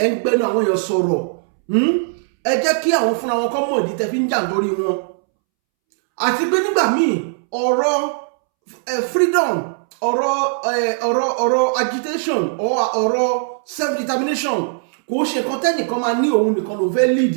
ẹ̀ ń gbẹnu àwọn èèyàn sọ̀rọ̀, ẹ jẹ́ kí àwọn fúnra wọn kọ́ mọ̀ ìdí tẹ́ fi ń jà nítorí wọn. Àti pé nígbà míì ọ̀rọ̀ freedom, ọ̀rọ̀ agitation, ọ̀rọ̀ self-determination kò ṣe nǹkan tẹ́nìkan máa ní òun nìkan ló fẹ́ lead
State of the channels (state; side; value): silent; left; 67 dB below the other